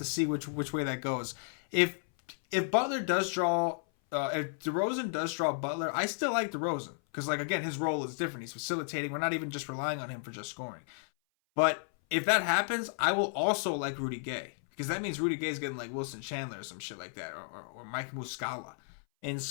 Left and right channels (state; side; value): silent; right; 56 dB below the other